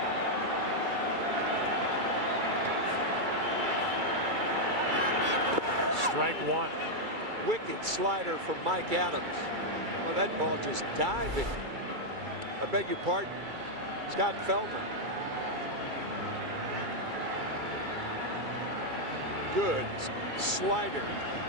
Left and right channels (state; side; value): late; left; 2.3 ms